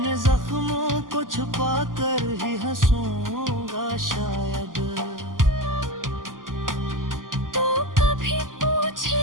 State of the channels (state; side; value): late; left; 0.90 ms